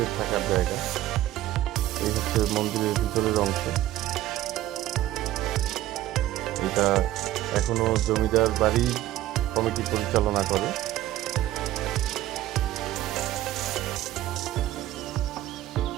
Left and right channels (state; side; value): quieter; left; 14.5 dB